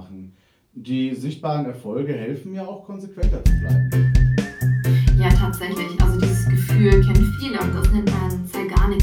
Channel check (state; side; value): identical; both; correlation 1.00